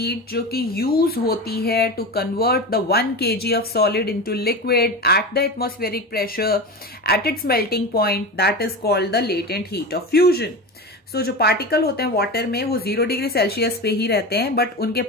जो कि use होती है to convert the 1 kg of solid into liquid at the atmospheric pressure at its melting point, that is called the latent heat of fusion. So जो particle होते हैं water में वो 0 डिग्री सेल्सियस पे ही रहते हैं, बट उनके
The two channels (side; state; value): both; normal; correlation 0.25